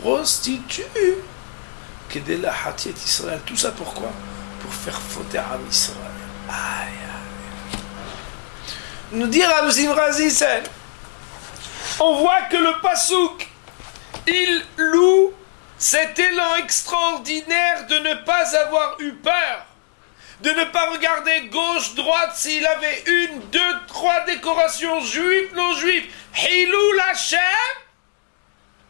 que de la Hatiet Israël. Tout ça pourquoi? Pour faire fauter à Israël. Aïe, aïe. Nous dire à Razisen, on voit que le Passouk, il loue cet élan extraordinaire de ne pas avoir eu peur, de ne pas regarder gauche, droite, s'il avait une, deux, trois décorations juives, non juives. Hilul Hashem,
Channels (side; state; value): right; silent; digital silence